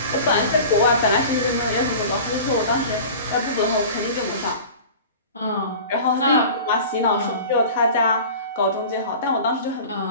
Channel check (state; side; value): inverted; both; correlation -0.38